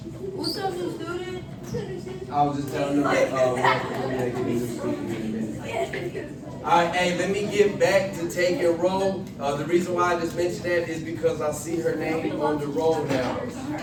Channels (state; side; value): identical; both; correlation 1.00